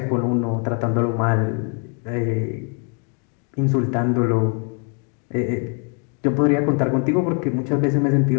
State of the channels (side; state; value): right; quieter; 39.3 dB